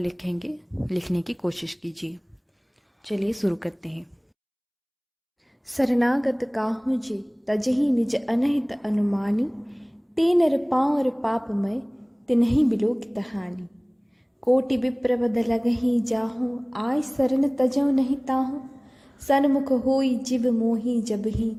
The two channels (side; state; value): both; identical; correlation 1.00